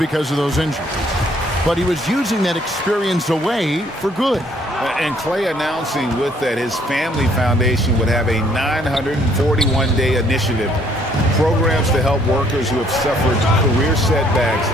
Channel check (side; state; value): both; normal; correlation 0.64